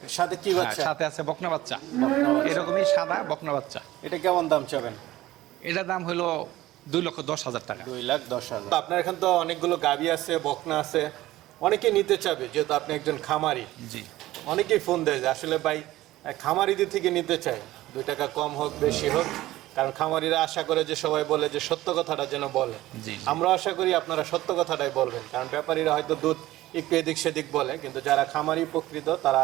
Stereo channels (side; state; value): left; quieter; 16.3 dB